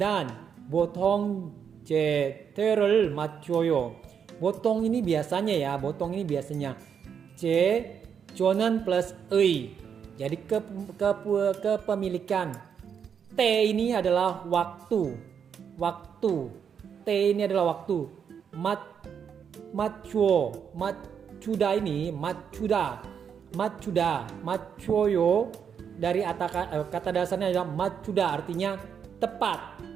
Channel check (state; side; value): quieter; left; 7.4 dB